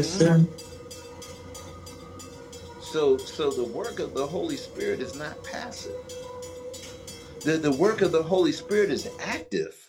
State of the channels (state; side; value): identical; both; correlation 1.00